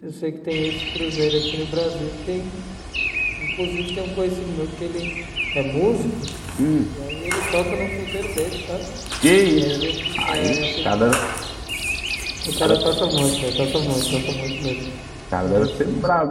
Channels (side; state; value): both; identical; correlation 1.00